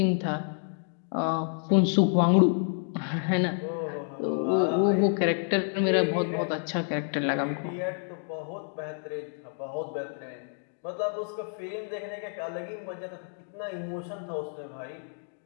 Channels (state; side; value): silent; right; 56 dB below the other